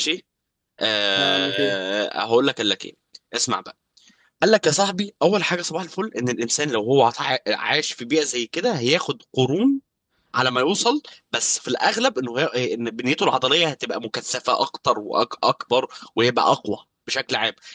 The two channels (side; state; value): both; identical; correlation 1.00